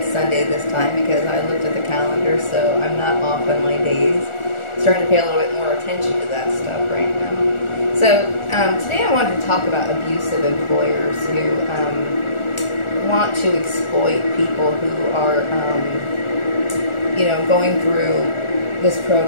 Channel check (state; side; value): late; right; 1.4 ms